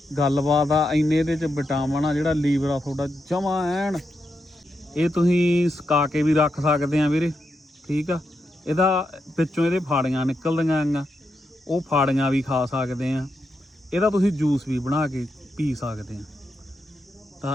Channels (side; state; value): both; normal; correlation 0.85